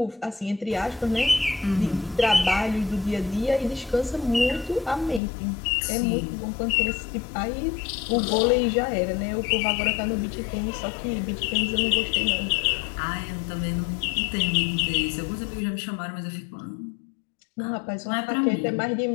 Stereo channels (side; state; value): right; drops out; at 5.2 s